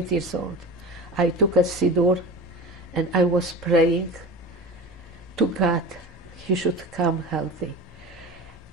years old. I took a siddur, and I was praying to God he should come healthy.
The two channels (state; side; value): normal; both; correlation 0.32